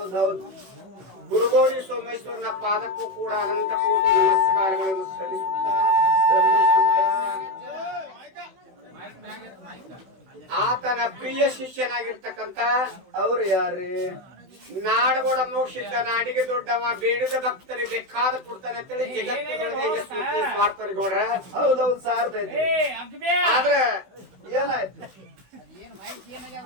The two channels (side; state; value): left; late; 16 ms